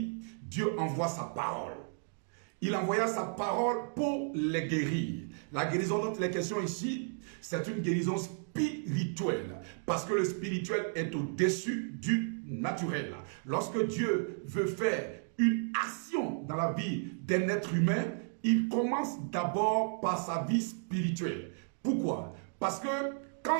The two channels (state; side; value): silent; left; 55 dB below the other